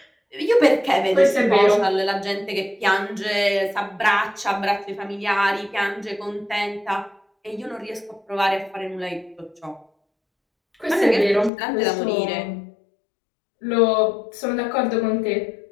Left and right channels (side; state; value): right; drops out; at 11.5 s